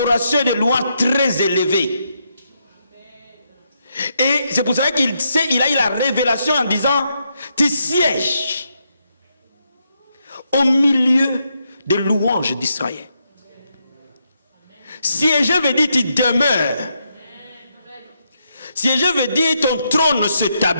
et de louange très élevée. Et c'est pour ça qu'il a eu la révélation en disant, tu sièges au milieu des louanges d'Israël. Siéger veut dire tu demeures. Siéger veut dire ton trône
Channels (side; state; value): both; inverted; correlation -0.80